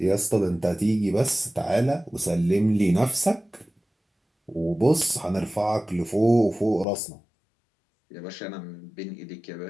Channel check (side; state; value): right; drops out; at 6.9 s